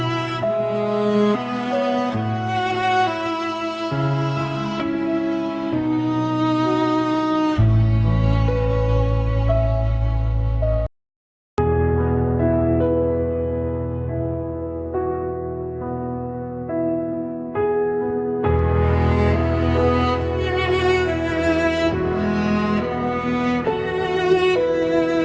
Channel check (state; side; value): identical; both; correlation 1.00